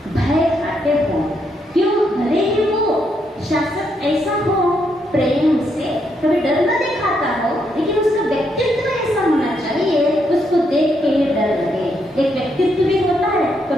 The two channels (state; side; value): normal; both; correlation 0.77